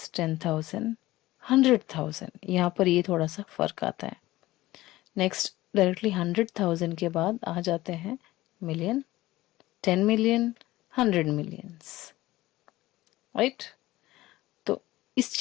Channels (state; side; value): quieter; right; 17.4 dB